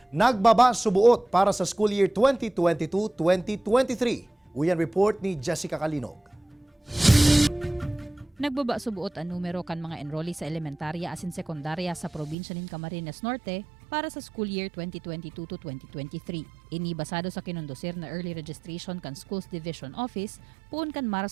nagbaba subuot para sa school year 2022-2023. Uyan report ni Jessica Kalinog. Nagbaba subuot ang numero kan mga enrollee sa elementarya asin sekundarya sa probinsya nin Camarines Norte para sa school year 2022 to 2023. Ini basado sa kinundosir na early registration kan Schools Division Office puun kan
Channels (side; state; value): left; drops out; at 12.4 s